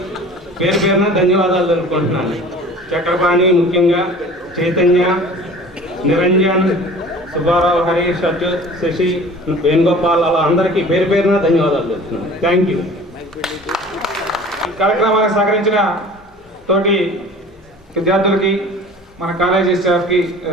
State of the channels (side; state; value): both; normal; correlation 0.44